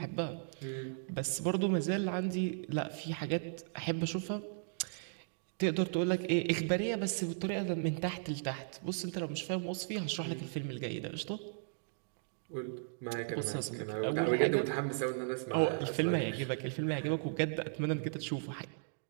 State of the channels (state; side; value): silent; left; digital silence